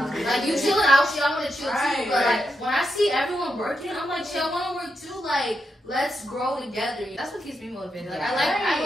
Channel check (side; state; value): both; normal; correlation 0.84